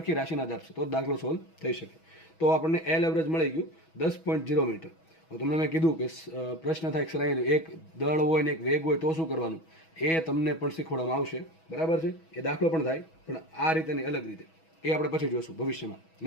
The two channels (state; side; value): late; right; 6.2 ms